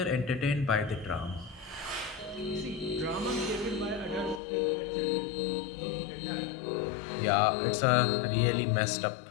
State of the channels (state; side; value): drops out; right; at 4.4 s